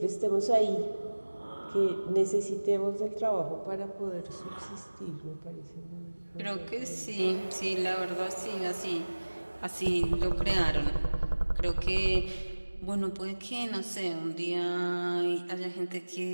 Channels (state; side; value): inverted; both; correlation -1.00